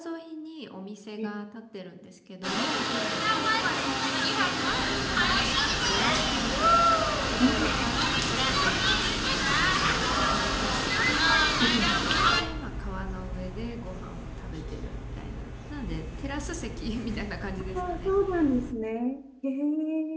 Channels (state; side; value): identical; both; correlation 1.00